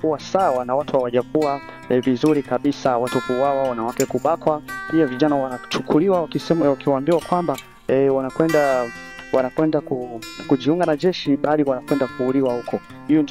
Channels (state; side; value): identical; both; correlation 1.00